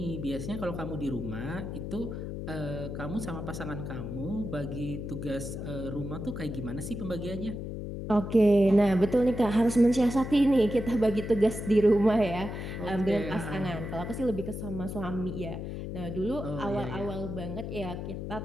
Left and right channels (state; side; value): noise; left; hum, 6 dB below the sound